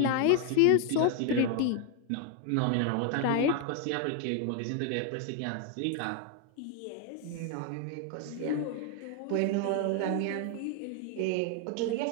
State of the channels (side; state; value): both; different; correlation 0.00